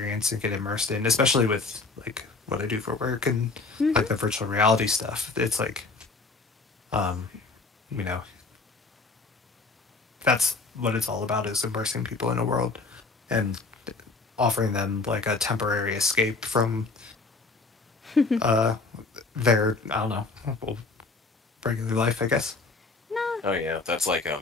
and get immersed in, especially with like what I do for work and Mm-hmm. like the virtual reality stuff. It's like, um, you know, that's what it's all about, is immersing people in a world and offering them like a temporary escape from uh, their, I don't know, well, regular life, I guess. No. Oh yeah,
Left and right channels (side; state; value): right; quieter; 3.9 dB